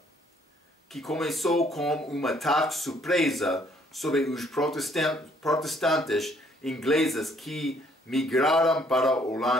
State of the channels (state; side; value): normal; both; correlation 0.64